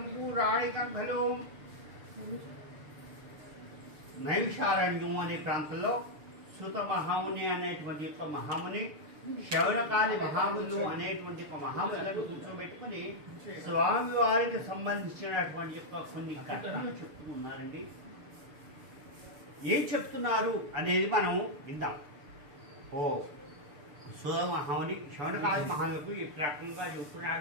పురాణికలో నైమిషారణ్యం అనే ప్రాంతంలో సుత మహాముని అనేటువంటి యొక్క మహాముని శౌనకాది మహాములు అనేటువంటి ఒక మహాములను కూర్చోబెట్టుకుని స్వామివారికి సంబంధించినటువంటి యొక్క కొన్ని కథలు చెప్తున్నారండి. ఏం చెప్తున్నారు అనేది మనం విందాం. ఓ సుత మహాముని శౌనకాది మహాములకు ఈ రకంగా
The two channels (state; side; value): late; left; 6.8 ms